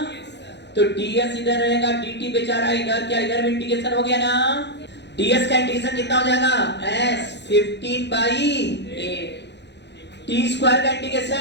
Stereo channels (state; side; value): late; right; 0.50 ms